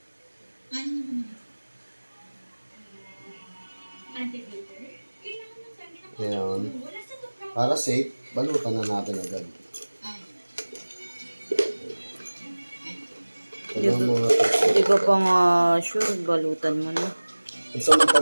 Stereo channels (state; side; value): inverted; both; correlation -1.00